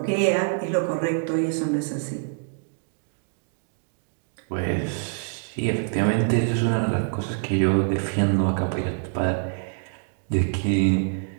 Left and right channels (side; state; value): left; silent; digital silence